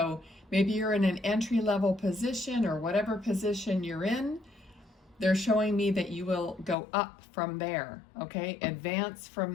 maybe you're in an entry-level position or whatever position you're in. They're showing me that you will go up from there, okay? Advance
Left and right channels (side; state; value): right; drops out; at 6.8 s